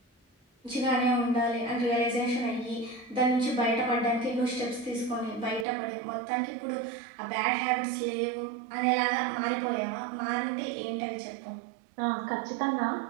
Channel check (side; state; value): left; drops out; at 5.7 s